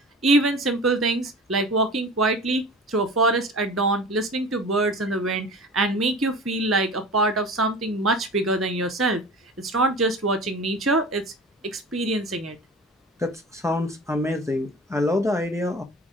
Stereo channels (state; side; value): normal; both; correlation 0.38